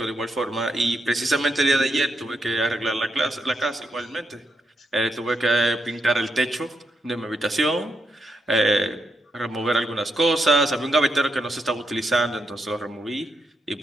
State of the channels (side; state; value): both; normal; correlation 0.82